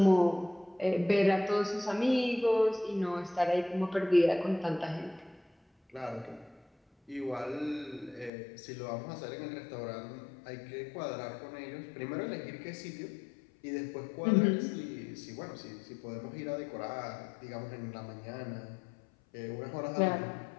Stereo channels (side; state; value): right; drops out; at 8.3 s